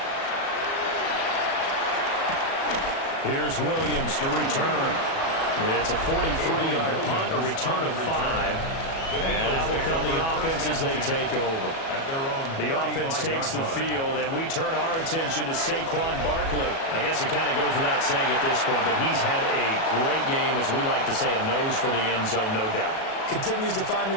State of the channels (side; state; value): right; late; 37 ms